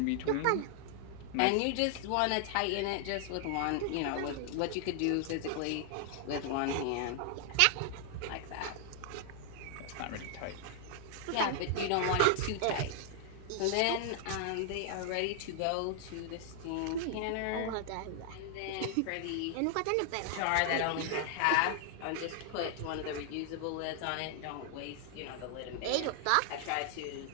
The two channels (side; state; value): both; different; correlation 0.00